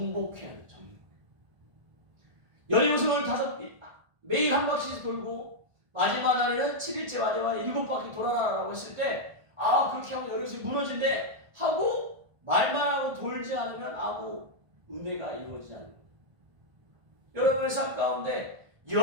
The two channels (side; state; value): left; late; 1.4 ms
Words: 돼요. 여리고성을 매일 한 바퀴씩 돌고 마지막 날에는 7일째 마지막 날에 7바퀴 돌아라라고 했을 때, 그렇게 하면 여리고성이 무너진대 하고 말만 하고 돌지 않으면 아무 은혜가 이루어지지 않는 거예요. 여러분의 삶 가운데